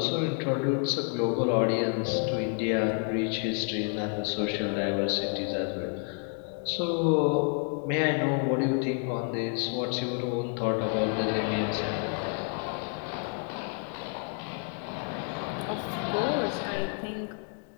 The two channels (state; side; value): quieter; right; 39.4 dB